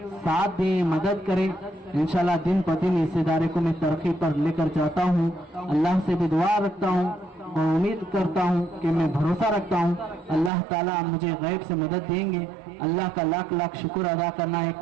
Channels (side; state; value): left; drops out; at 10.5 s